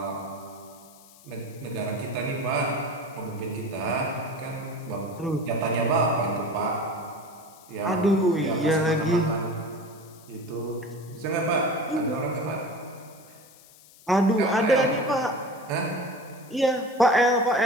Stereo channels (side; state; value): left; noise; hiss, 24 dB below the sound